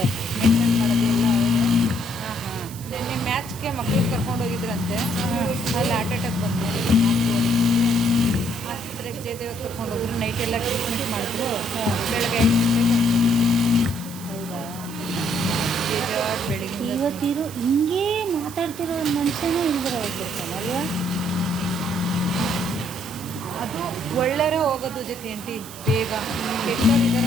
ಮೇಂಟೈನ್ ಮಾಡೋದು ಎಲ್ಲ ಅವರೇ ಹಾಂ ಹಾಂ ನಿನ್ನೆ ಮ್ಯಾಚ್ಗೆ ಮಕ್ಳಿಗೆ ಕರ್ಕೊಂಡು ಹೋಗಿದ್ರಂತೆ ಅಲ್ಲಿ ಹಾರ್ಟ್ ಅಟ್ಯಾಕ್ ಬಂತು ಆಸ್ಪತ್ರೆಗೆ ಜಯದೇವ ಕರ್ಕೊಂಡು ಹೋದ್ರು ನೈಟ್ ಎಲ್ಲ ಟ್ರೀಟ್ಮೆಂಟ್ ಮಾಡಿದ್ರು ಬೆಳಗ್ಗೆ 5 ಗಂಟೆಗೆ ಹೌದಾ ಬೇಜಾರು ಬೆಳಿಗ್ಗೆ ಇವತ್ತಿರೋ ಹಿಂಗೇ ಮಾತಾಡ್ತಿರೋ ಒಂದು ಮನುಷ್ಯನೇ ಇಲ್ದಿರ ಹೋಗ್ಬಿಡ್ತಾನಲ್ವಾ ಅದು ಒಳ್ಳೆಯರೇ ಹೋಗೋದು ಜೊತೆ ಆಂಟಿ ಬೇಗ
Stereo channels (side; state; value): right; noise; hiss, 15 dB below the sound